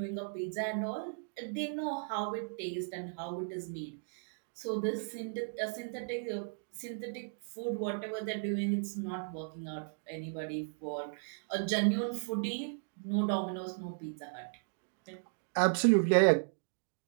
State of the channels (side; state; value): left; silent; digital silence